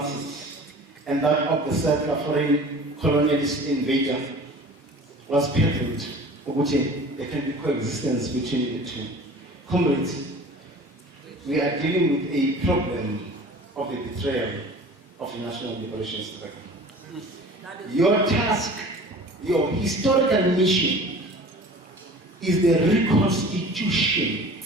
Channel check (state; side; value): normal; both; correlation 0.43